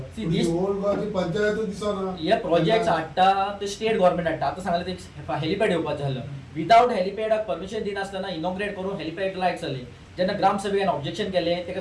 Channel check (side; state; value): both; identical; correlation 1.00